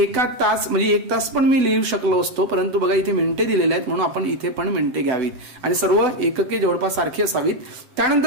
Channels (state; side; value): late; left; 7.9 ms